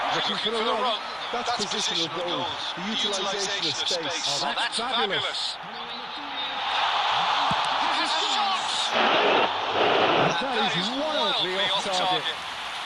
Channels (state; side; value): identical; both; correlation 1.00